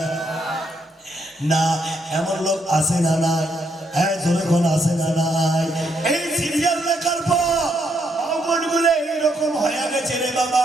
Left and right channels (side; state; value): both; normal; correlation 0.75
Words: না? এমন লোক আছে না নাই? জোরে কোন আছে না নাই? এই সিরিয়াল দেখার পর মনগুলো এইরকম হয়ে গেছে রে